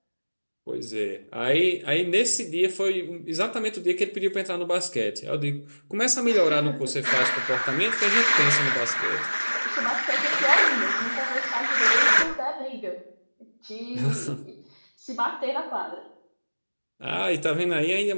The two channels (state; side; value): inverted; both; correlation -1.00